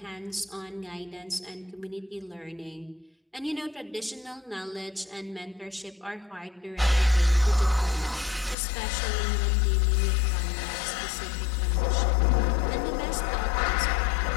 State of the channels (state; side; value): drops out; right; at 8.6 s